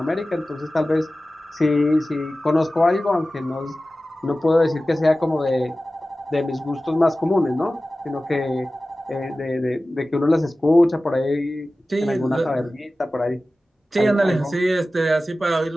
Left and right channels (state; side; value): normal; both; correlation 0.96